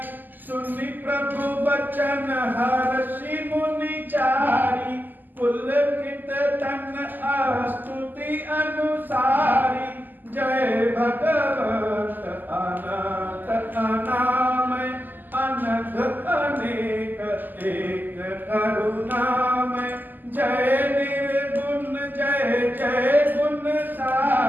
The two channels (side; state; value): left; late; 0.087 ms